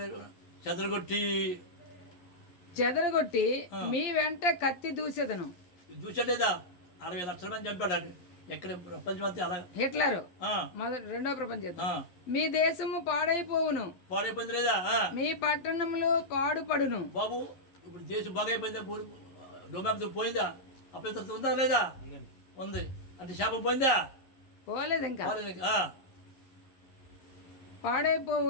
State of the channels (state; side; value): late; right; 11 ms